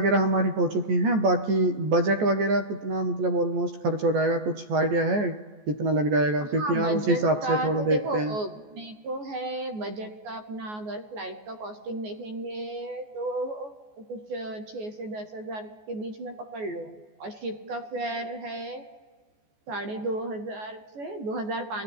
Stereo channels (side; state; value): left; late; 14 ms